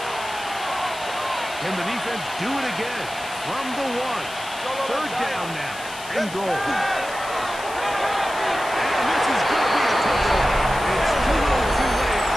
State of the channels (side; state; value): left; noise; hiss, 14 dB below the sound